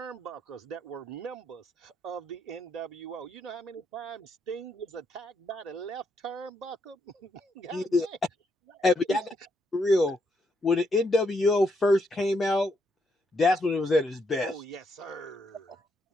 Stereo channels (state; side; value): normal; both; correlation 0.77